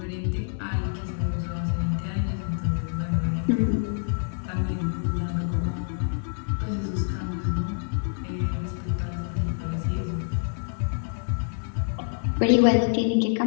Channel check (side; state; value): right; silent; digital silence